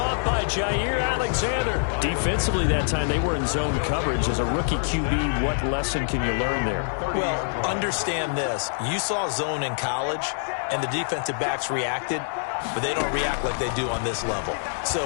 by Jair Alexander. Defensively that time, they were in zone coverage. As a rookie QB, what lesson can you learn there? Well, understand this. You saw zone in college, and the defensive backs reacted, but they don't react like they do on this level. So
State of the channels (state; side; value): silent; right; digital silence